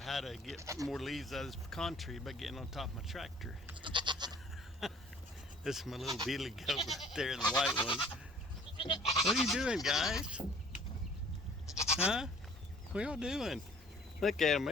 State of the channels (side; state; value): both; normal; correlation 0.53